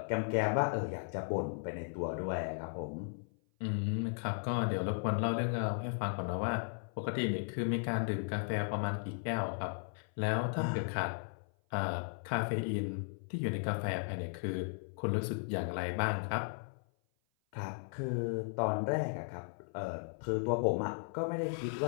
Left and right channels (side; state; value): right; silent; 54 dB below the other